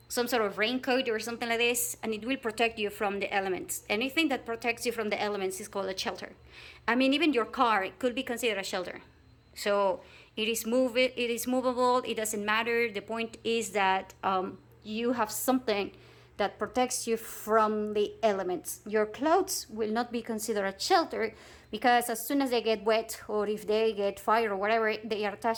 sort of raincoat or something like this, and it will protect you from the elements. Anything that protects you from the elements is called a shelter. I mean, even your car could be considered a shelter. So it is movable, it doesn't matter. The point is that you have something that protects you from the elements. Your clothes will not be considered a shelter because as soon as they get wet or if they get fire or whatever, they are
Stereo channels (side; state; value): both; identical; correlation 1.00